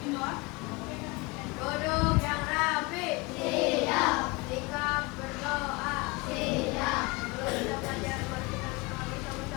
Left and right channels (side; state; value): right; quieter; 25.7 dB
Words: doa. Duduk yang rapi. Siap. Sikap berdoa. Siap. Kalau kita belajar, mari kita